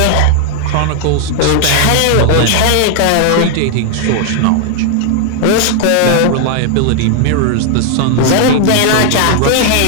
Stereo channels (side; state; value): both; different; correlation 0.00